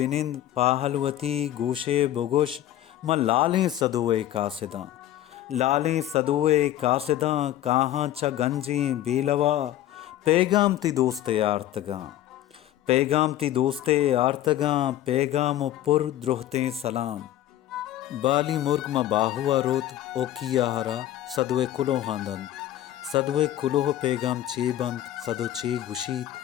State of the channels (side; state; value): right; quieter; 13.0 dB